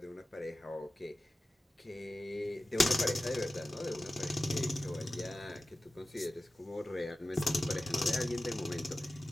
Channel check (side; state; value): both; normal; correlation 0.95